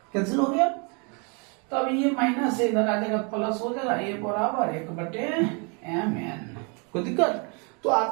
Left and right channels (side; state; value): left; quieter; 34.2 dB